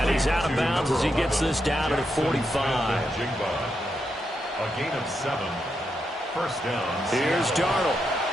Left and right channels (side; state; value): both; normal; correlation 0.83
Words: he's out of bounds as he gets this down to the 45. A gain of 7. First down. Here's Darnold.